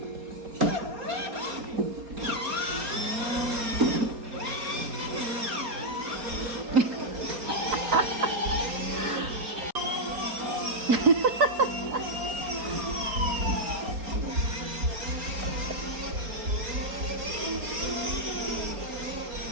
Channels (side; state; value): left; late; 4.3 ms